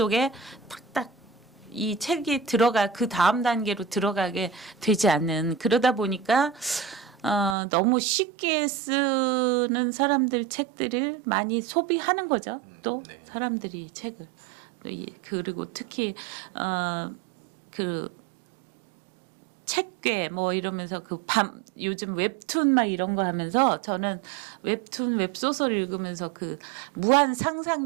탁탁 이 책이 그 다음 단계로 들어가게 되지 않는 그러다 보니까 너무 쉽게 쓰는 사람들 책들을 많이 소비하는 거죠. 또 네. 사람들이 책을 그리고 특히 책괴 뭐 이러면서 그 요즘 웹툰 막 이런 거 하면서 저는 웹툰 웹소설 읽으면서 그 무한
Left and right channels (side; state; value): left; drops out; at 7.6 s